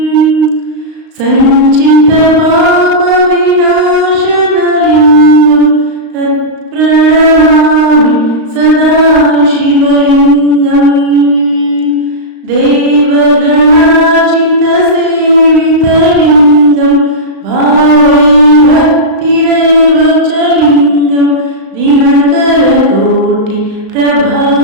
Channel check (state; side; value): late; left; 35 ms